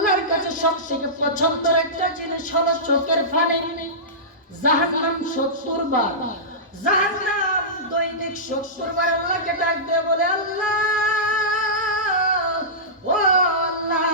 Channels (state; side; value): normal; both; correlation -0.18